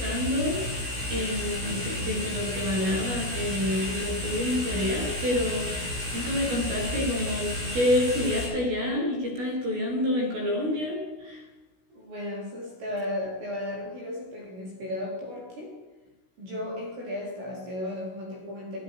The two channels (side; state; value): left; late; 16 ms